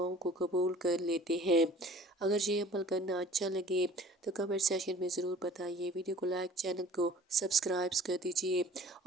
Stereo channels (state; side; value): normal; both; correlation 0.48